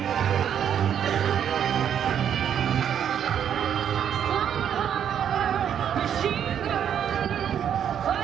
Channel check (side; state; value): left; quieter; 9.0 dB